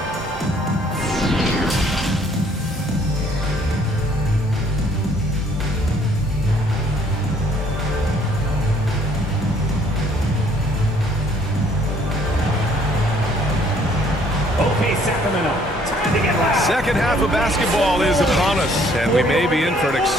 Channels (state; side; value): normal; both; correlation 0.61